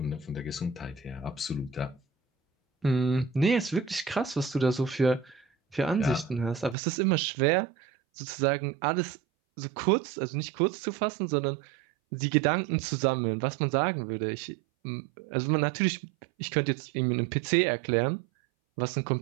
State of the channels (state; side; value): drops out; left; at 6.8 s